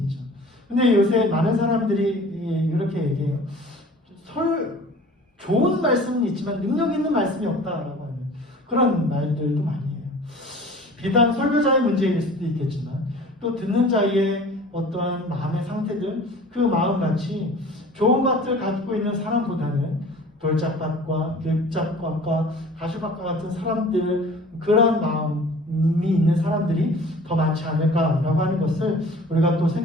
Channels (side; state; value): both; normal; correlation 0.45